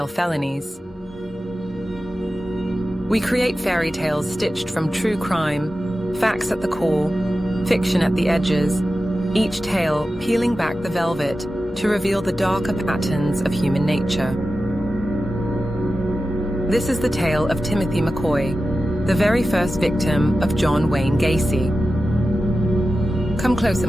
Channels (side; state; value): both; normal; correlation 0.93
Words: Felonies. We create fairy tales stitched from true crime, facts at the core, fiction at the edges, each tale peeling back the velvet to reveal the darker patterns of human nature. This is the tale of Timothy McCoy, the very first victim of John Wayne Gacy. Come closer,